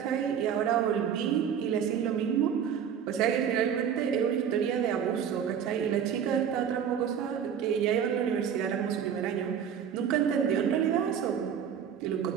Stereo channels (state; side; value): quieter; left; 8.2 dB